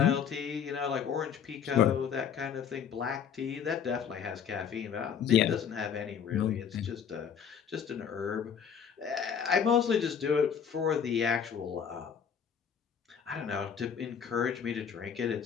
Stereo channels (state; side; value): quieter; right; 7.6 dB